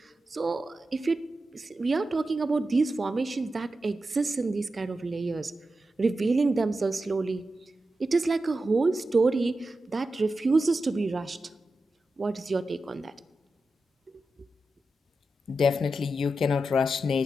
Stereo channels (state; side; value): normal; both; correlation 0.90